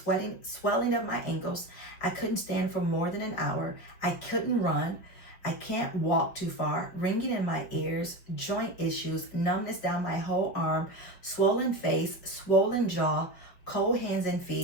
swelling of my ankles. I couldn't stand for more than an hour. I couldn't run. I can't walk too far, ringing in my ears, joint issues, numbness down my whole arm, swollen face, swollen jaw, cold hands and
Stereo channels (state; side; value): late; right; 5.7 ms